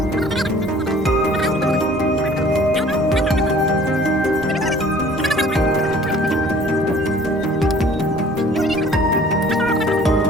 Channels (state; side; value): normal; both; correlation 0.52